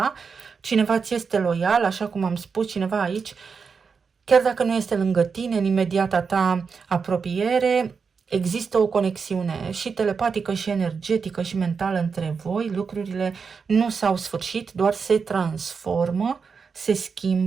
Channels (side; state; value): left; quieter; 5.5 dB